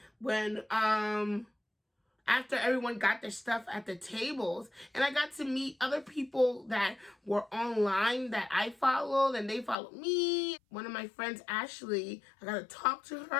when after everyone got their stuff at the tables, and I got to meet other people that were online that I followed, and they followed me. One of my friends, Ashley, I got to talk to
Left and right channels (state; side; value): drops out; right; at 9.8 s